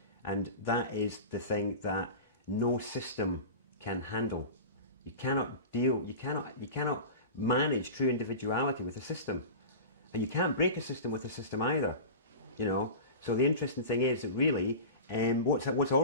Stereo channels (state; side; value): inverted; both; correlation -0.31